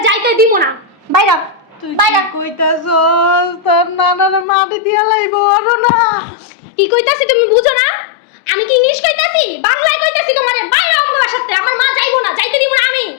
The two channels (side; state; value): right; drops out; at 4.5 s